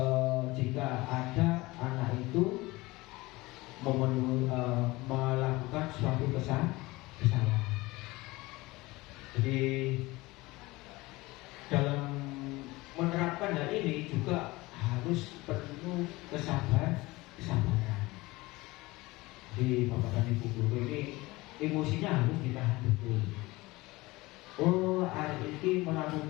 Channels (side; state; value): right; quieter; 21.1 dB